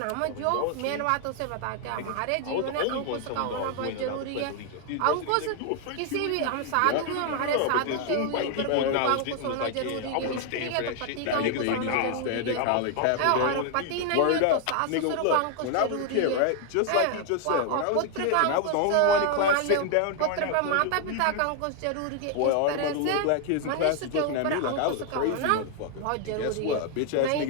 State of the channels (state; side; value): different; both; correlation 0.00